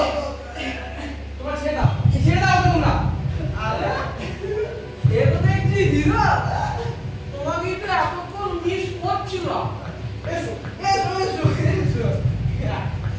তোমাকে তো এতক্ষণ মিস করছিল। এসো এসো এসো এসো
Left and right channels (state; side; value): identical; both; correlation 1.00